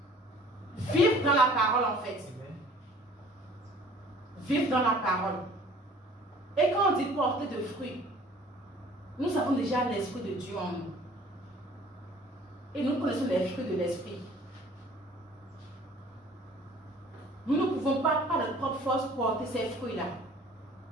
Vivre dans la parole en fait. Vivre dans la parole. Et quand on dit porter de fruits, nous avons déjà l'Esprit de Dieu en nous. Et nous connaissons les fruits de l'Esprit. Nous ne pouvons pas, par notre propre force, porter ces fruits-là.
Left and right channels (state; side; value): normal; both; correlation 0.51